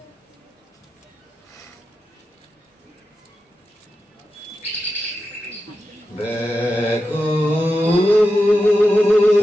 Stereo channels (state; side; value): normal; both; correlation 0.90